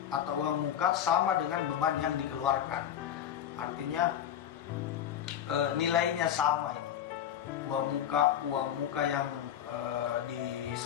sama dengan beban yang dikeluarkan. Artinya nilainya sama ini. Uang muka yang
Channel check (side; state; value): right; quieter; 10.0 dB